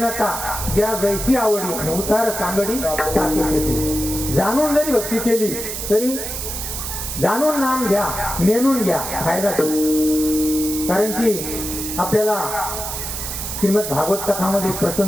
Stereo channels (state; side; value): noise; right; hiss, 5 dB below the sound